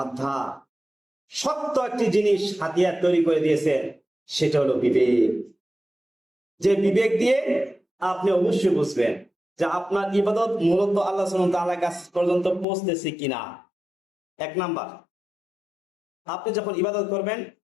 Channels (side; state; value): right; drops out; at 12.7 s